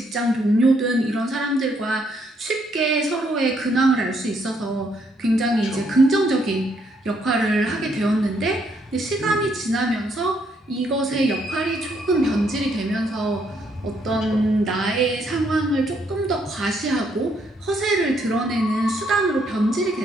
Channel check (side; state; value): both; normal; correlation 0.72